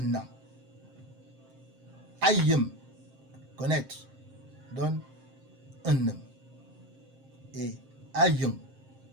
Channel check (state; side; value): late; left; 7.6 ms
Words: an. Ayem, connaître, donne un homme. Et Ayong,